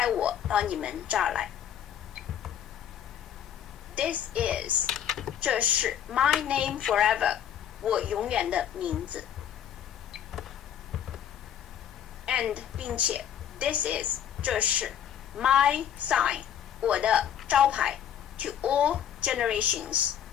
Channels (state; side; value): quieter; right; 9.7 dB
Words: 我到你们这儿来 This is 这是 my name forever 我永远的名字 and 并且 this is 这是 my sign 我的招牌 to all generations